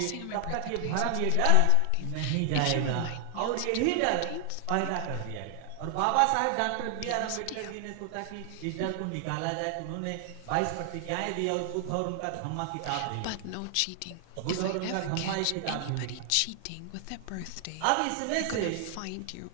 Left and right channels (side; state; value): both; different; correlation 0.00